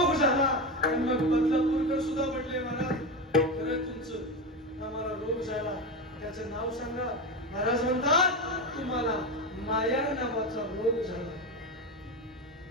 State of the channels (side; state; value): both; normal; correlation 0.18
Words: झाला आणि मग बदलापूरकर सुद्धा म्हटले महाराज खरं तुमचं आम्हाला रोग झाला त्याचं नाव सांगा. महाराज म्हणतात तुम्हाला माया नावाचा रोग झाला.